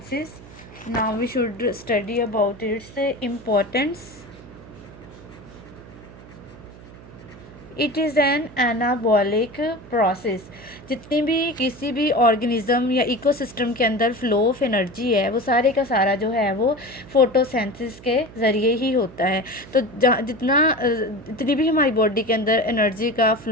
Now we should study about its importance. It is an anabolic process. जितनी भी किसी भी ऑर्गेनिज्म या इकोसिस्टम के अंदर फ्लो ऑफ एनर्जी है वो सारे का सारा जो है वो फोटोसिंथेसिस के ज़रिए ही होता है. तो जितनी भी हमारी बॉडी के अंदर एनर्जी का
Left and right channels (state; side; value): noise; right; hum, 19 dB below the sound